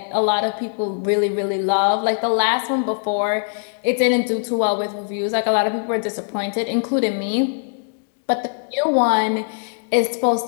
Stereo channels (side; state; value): right; silent; digital silence